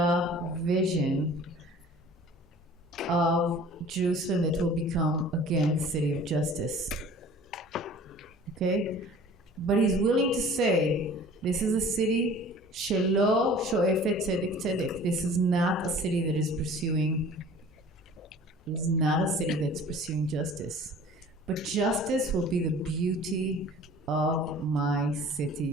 vision of Jerusalem that will become again the city of justice, okay? But he's willing to say, this is a city shelo shoefet tzedek tzedek. This is not a city that is pursuing. It's not a city that's pursuing justice. But justice will be the beauty of my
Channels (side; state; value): both; normal; correlation 0.46